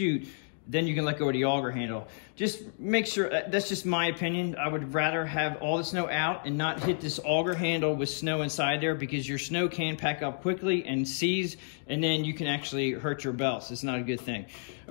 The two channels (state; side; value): silent; right; digital silence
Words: then you can let go of the auger handle. Just make sure, that's just my opinion. I would rather have all the snow out and not hit this auger handle with snow inside there, because your snow can pack up quickly and seize, and then you can actually hurt your belts. It's not a good thing.